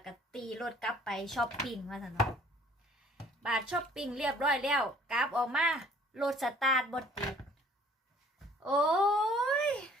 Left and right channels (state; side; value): normal; both; correlation 0.56